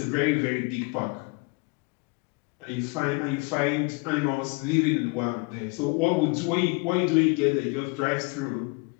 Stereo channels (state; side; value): quieter; right; 30.0 dB